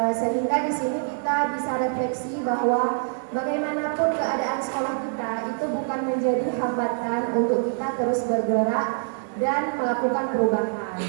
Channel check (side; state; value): left; silent; digital silence